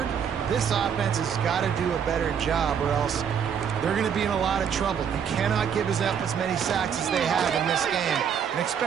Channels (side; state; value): left; quieter; 7.7 dB